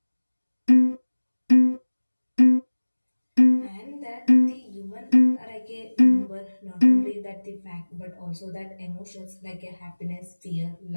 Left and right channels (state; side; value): inverted; both; correlation -1.00